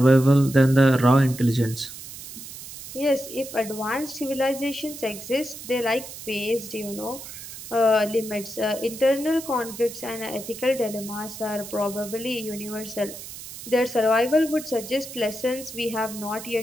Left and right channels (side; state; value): right; noise; hiss, 12 dB below the sound